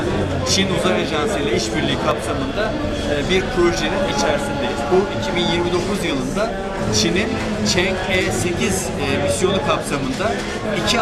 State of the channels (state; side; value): identical; both; correlation 1.00